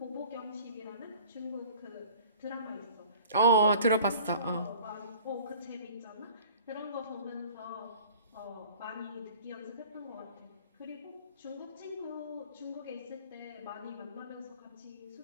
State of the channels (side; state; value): both; inverted; correlation -0.47